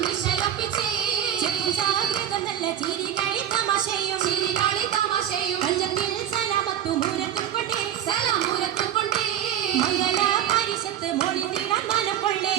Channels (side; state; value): left; quieter; 10.4 dB